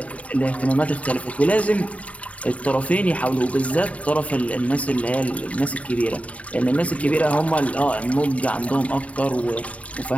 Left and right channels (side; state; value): right; late; 0.066 ms